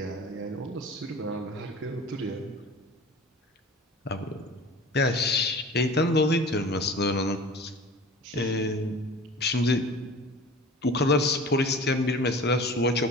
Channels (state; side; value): normal; both; correlation 0.40